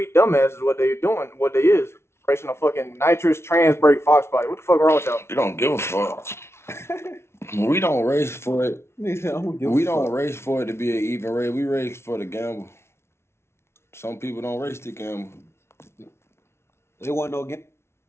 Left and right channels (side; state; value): right; late; 0.12 ms